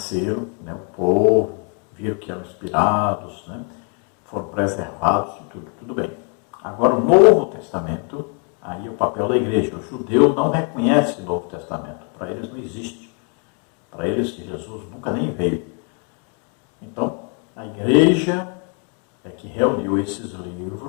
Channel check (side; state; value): right; quieter; 39.4 dB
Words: né, o povo, viram que eram inspirados, né? Foram preservados, tudo bem. Agora, o Novo Testamento, aí é o papel da Igreja. O judeu não reconhece o Novo Testamento, para eles não existe. Para eles, Jesus nunca nem veio. Então, a Igreja é que reuniu esses